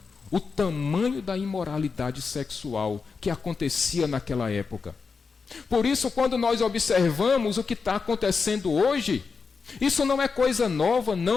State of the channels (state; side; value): quieter; right; 5.0 dB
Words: o tamanho da imoralidade sexual que acontecia naquela época. Por isso, quando nós observamos o que está acontecendo hoje, isso não é coisa nova,